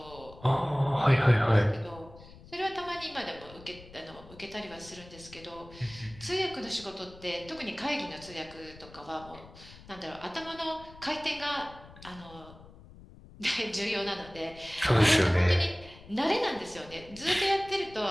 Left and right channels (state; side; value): noise; left; rumble, 20 dB below the sound